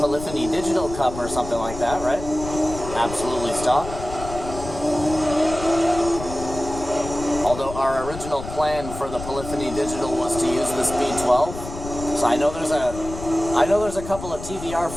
Polyphony Digital Cup or something like that, right? Absolutely stock. Although our original plan for the Polyphony Digital was to use the Speed 12, so I know there's a couple of TVR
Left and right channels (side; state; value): left; noise; rumble, 10 dB below the sound